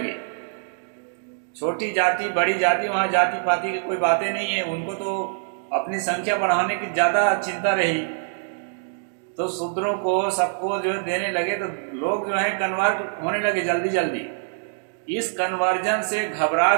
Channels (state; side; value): silent; left; digital silence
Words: छोटी जाति बड़ी जाति, वहां जाति पाति की कोई बातें नहीं है, उनको तो अपनी संख्या बढ़ाने की ज्यादा चिंता रही। तो शूद्रों को सबको जो देने लगे, तो लोग जो है कन्वर्ट होने लगे जल्दी जल्दी। इस कन्वर्जन से